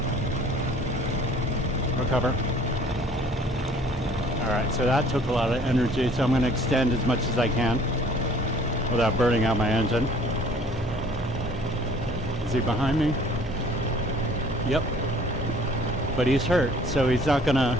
Recover. Alright, so that took a lot of energy, so I'm going to extend as much as I can without burning out my engine. Is he behind me? Yep. But he's hurt, so he's not gonna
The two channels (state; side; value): normal; both; correlation 0.54